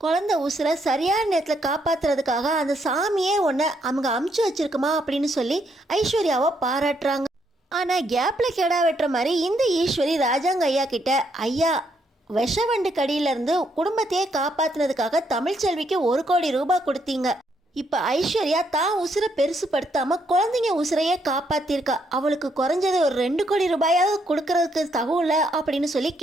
குழந்தை உசுரை சரியான நேரத்தில் காப்பாற்றுறதுக்காக அந்த சாமியே ஒன்று அவங்க அமுச்சு வச்சிருக்குமா அப்படின்னு சொல்லி ஐஸ்வர்யாவை பாராட்டுறாங்க. ஆனால் கேப்பில் கெடா வெட்டுற மாதிரி இந்த ஈஸ்வரி ராஜாங்க ஐயா கிட்ட, ஐயா விஷவண்டு கடியிலேருந்து குடும்பத்தையே காப்பாற்றினதுக்காக தமிழ்ச்செல்விக்கு 1,00,00,000 கொடுத்தீங்க. இப்போ ஐஸ்வர்யா தான் உசுரை பெருசுப்படுத்தாமல் குழந்தைங்க உசுரையே காப்பாற்றிருக்கா, அவளுக்கு குறைஞ்சது ஒரு 2,00,00,000 கொடுக்கறதுக்கு தகுல அப்படின்னு சொல்லி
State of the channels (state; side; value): normal; both; correlation 0.74